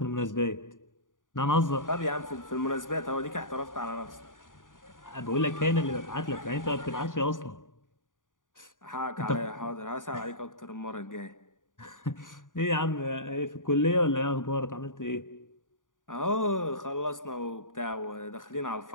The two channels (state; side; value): late; right; 0.88 ms